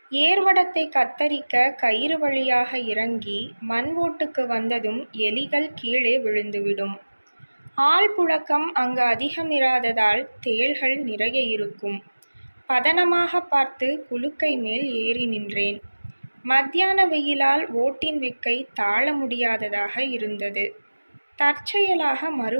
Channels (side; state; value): both; inverted; correlation -1.00